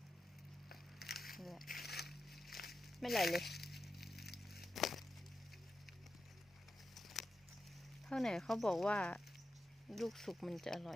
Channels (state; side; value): normal; both; correlation 0.90